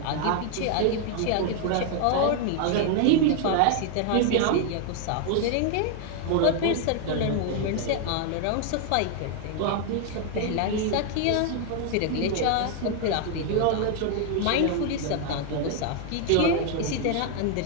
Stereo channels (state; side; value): different; both; correlation 0.00